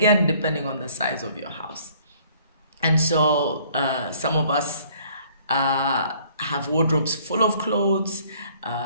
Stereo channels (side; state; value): both; inverted; correlation -0.59